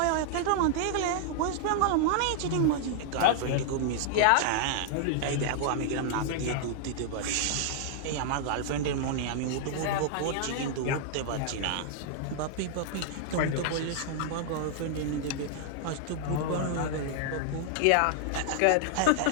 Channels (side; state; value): both; different; correlation -0.01